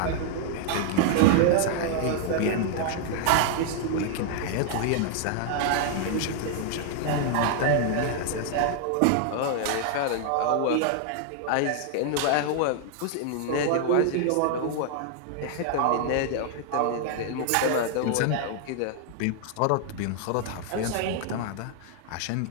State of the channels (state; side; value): different; both; correlation 0.00